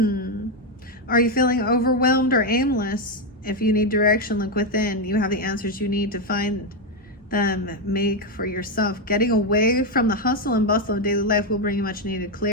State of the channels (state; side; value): normal; both; correlation 0.06